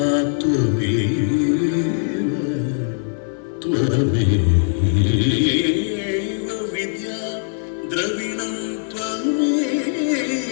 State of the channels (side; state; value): right; silent; digital silence